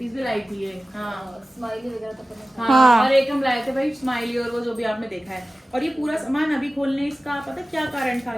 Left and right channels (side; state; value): both; normal; correlation 0.97